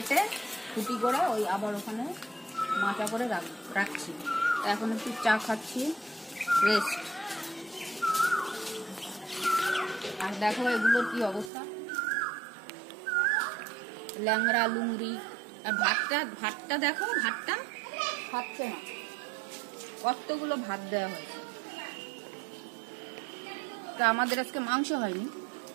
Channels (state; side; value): drops out; left; at 11.5 s